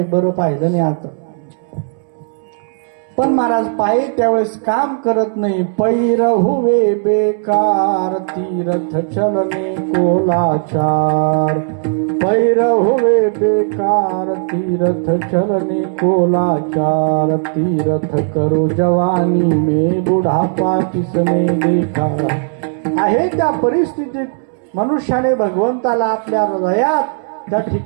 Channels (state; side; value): silent; left; 69 dB below the other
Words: बरं पाहिलं नाही आता. पण महाराज पायी त्यावेळेस काम करत नाही. पैर हुवे बेकार तीर्थ चलने को लाचार, पैर हुवे बेकार तीर्थ चलने को लाचार. तीर्थ करो जवानी में बुढ़ापा किसने देखा. आहे त्या परिस्थितीत मनुष्याने भगवंताला आपल्या हृदयात त्या